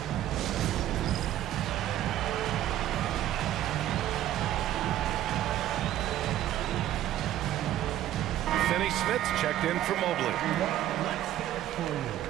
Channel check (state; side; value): quieter; left; 12.8 dB